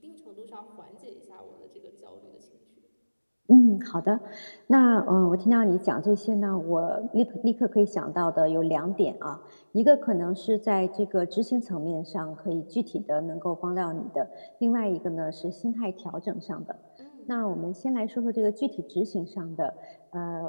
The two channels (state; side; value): inverted; both; correlation -1.00